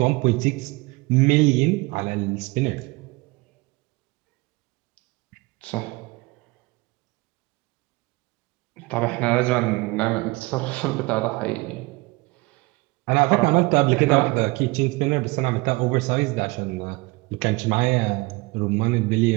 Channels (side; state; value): left; quieter; 24.2 dB